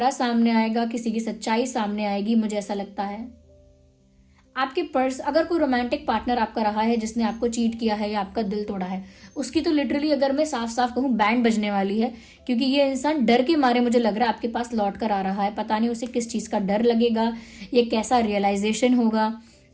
सामने आएगा, किसी की सच्चाई सामने आएगी, मुझे ऐसा लगता है। आपके अगर कोई रोमांटिक पार्टनर आपका रहा है जिसने आपको चीट किया है या आपका दिल तोड़ा है, उसकी तो लिटरली अगर मैं साफ साफ कहूँ बैंड बजने वाली है, क्योंकि ये इंसान डर के मारे मुझे लग रहा है आपके पास लौट कर आ रहा है। पता नहीं उसे किस चीज का डर लगेगा, ये कैसा रियलाइजेशन होगा।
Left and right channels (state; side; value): identical; both; correlation 1.00